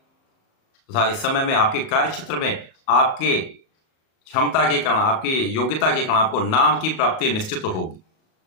इस समय में आपके कार्य क्षेत्र में आपके क्षमता के कारण, आपकी योग्यता के कारण आपको नाम की प्राप्ति निश्चित होगी।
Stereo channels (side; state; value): right; late; 38 ms